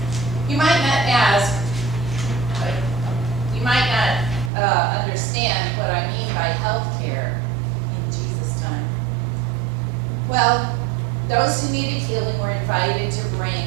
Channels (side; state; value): left; drops out; at 4.5 s